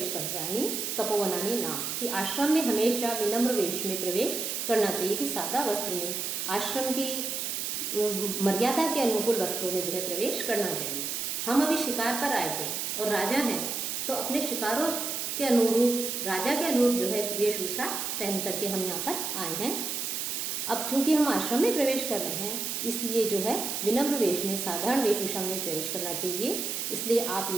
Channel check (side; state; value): right; noise; hiss, 2 dB below the sound